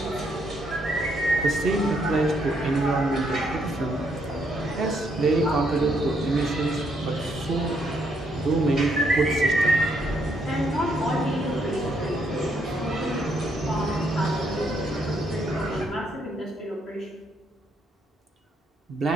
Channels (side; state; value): both; normal; correlation 0.74